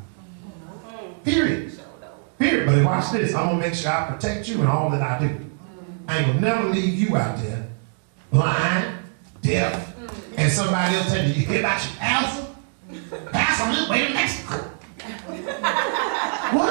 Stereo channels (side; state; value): left; silent; 60 dB below the other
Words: Period. Period. But watch this. I'm going to make sure I protect you in all that I do. I ain't going to never leave you out there blind, deaf, and somebody else telling you, you hear about your pastor? Pastor on his way to Mexico.